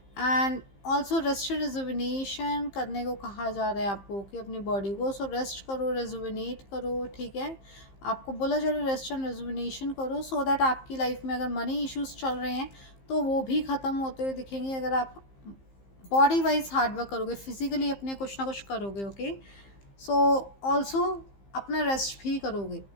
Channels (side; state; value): right; late; 15 ms